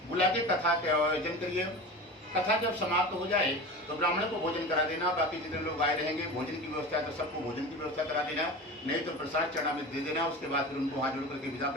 बुला के कथा का आयोजन करिए। कथा जब समाप्त हो जाए तो ब्राह्मण को भोजन करा देना। बाकी जितने लोग आए रहेंगे, भोजन की व्यवस्था है तो सबको भोजन की व्यवस्था करा देना, नहीं तो प्रसाद चरणामृत दे देना। उसके बाद फिर उनको हाथ जोड़ करके विदा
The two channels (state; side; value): normal; both; correlation 0.31